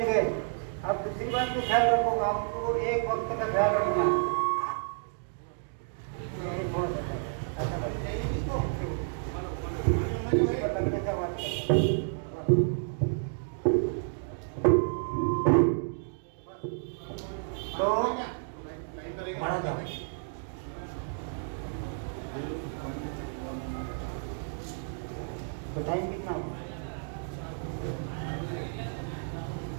अब दूसरी बात को ख्याल रखो, आपको एक वक्त का ख्याल रखना। तो टाइम कितना होगा?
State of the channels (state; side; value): silent; left; digital silence